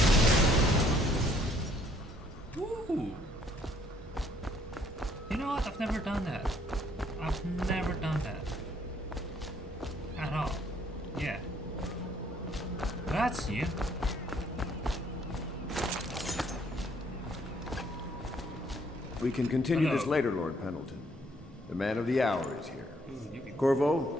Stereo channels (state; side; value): normal; both; correlation 0.65